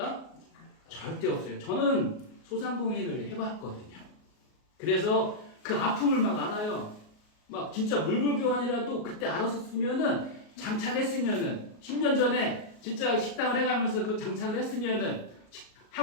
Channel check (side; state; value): right; late; 38 ms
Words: 절대 없어요. 저는 소상공인을 해봤거든요. 그래서 그 아픔을 막 알아요. 막 진짜 물물교환이라도 그때 알았었으면은 장착했으면은 10년 전에 진짜 식당을 해가면서 그 장착을 했으면은